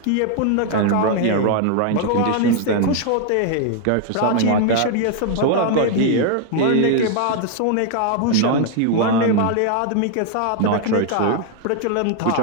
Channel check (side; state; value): both; different; correlation 0.00